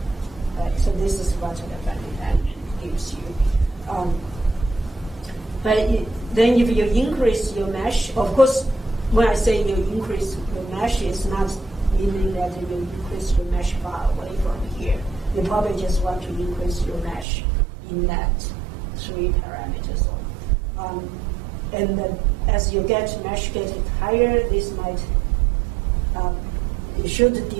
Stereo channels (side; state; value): left; drops out; at 17.2 s